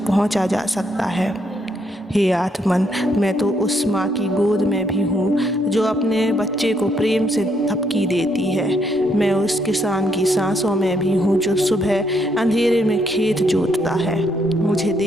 पहुंचा जा सकता है। हे आत्मन, मैं तो उस माँ की गोद में भी हूँ जो अपने बच्चे को प्रेम से थपकी देती है। मैं उस किसान की सांसों में भी हूँ जो सुबह अंधेरे में खेत जोतता है। मुझे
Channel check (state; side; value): normal; both; correlation 0.74